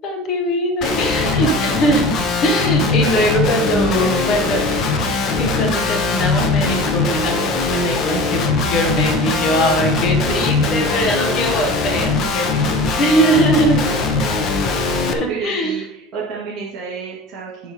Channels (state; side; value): normal; both; correlation 0.36